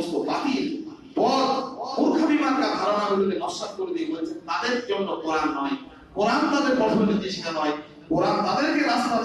বাতিল পথ মূর্খামি মার্কা ধারণাগুলোকে নস্যাৎ করে দিয়ে বলেছেন তাদের জন্য কোরআন নয়, কোরআন তাদের পথ নির্দেশিকা নয়। কোরআন তাদেরকে রাস্তা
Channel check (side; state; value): both; identical; correlation 1.00